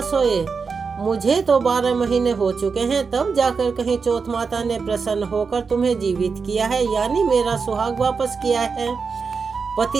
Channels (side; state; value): left; quieter; 5.2 dB